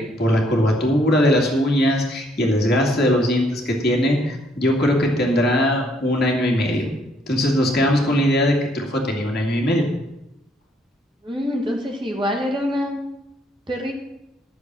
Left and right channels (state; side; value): normal; both; correlation 0.68